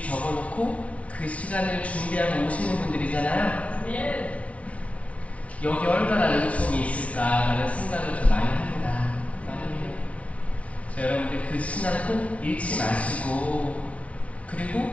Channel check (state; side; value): late; right; 0.067 ms